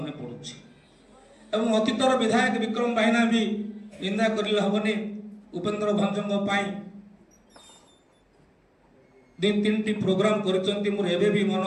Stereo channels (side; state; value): both; identical; correlation 1.00